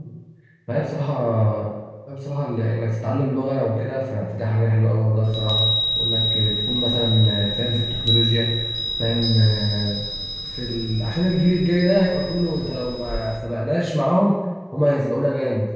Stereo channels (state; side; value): identical; both; correlation 1.00